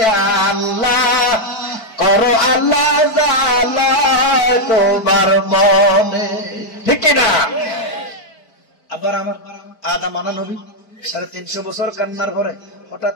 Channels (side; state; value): right; late; 4.5 ms